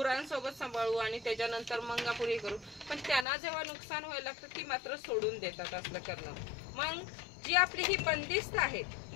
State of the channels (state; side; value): drops out; right; at 3.2 s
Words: सांभाळू आणि त्याच्यानंतर मंगापुरी करू, पण त्यांना जेव्हा नुकसान व्हायला लागतं ती मात्र सोडून देतात असलं करणं. मग जी आपली ही बंदिस्त आहेत